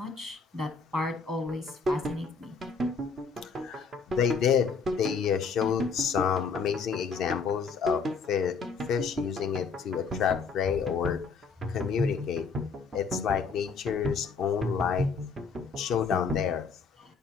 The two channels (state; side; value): quieter; right; 5.2 dB